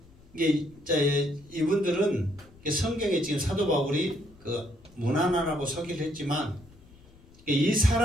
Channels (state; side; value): noise; left; rumble, 25 dB below the sound